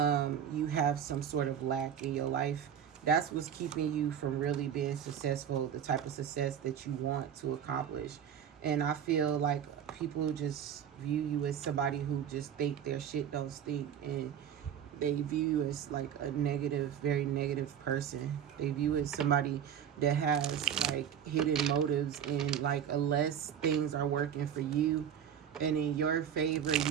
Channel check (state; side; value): quieter; left; 8.9 dB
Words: you have some sort of lack in your life, that's what's keeping you from really being successful, the type of success that you want to accomplish. And I feel like people just view you as somebody who just think their shit don't stink, and they view you as like a negative, very negative person. They view you as somebody that has like hidden motives, and like unless things are working for you and in your favor, you